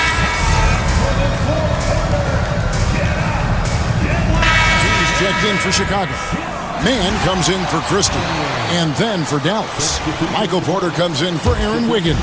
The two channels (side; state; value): both; identical; correlation 1.00